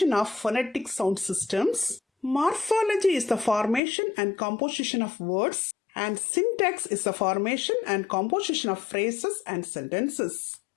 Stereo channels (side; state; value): right; drops out; at 3.8 s